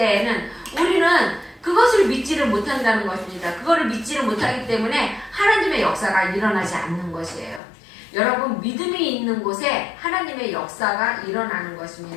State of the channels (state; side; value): drops out; right; at 7.6 s